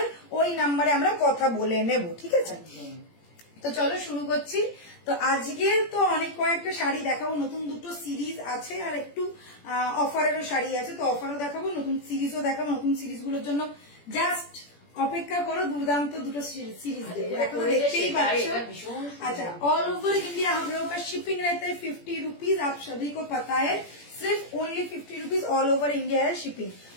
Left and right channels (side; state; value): right; late; 17 ms